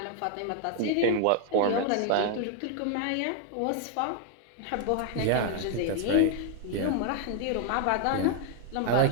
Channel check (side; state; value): both; different; correlation 0.00